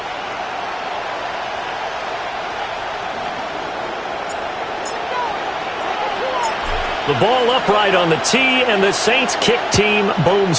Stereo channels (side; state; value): both; identical; correlation 1.00